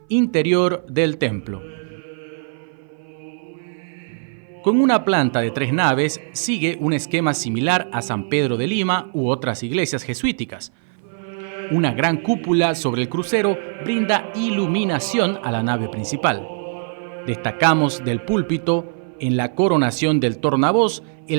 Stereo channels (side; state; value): left; silent; 59 dB below the other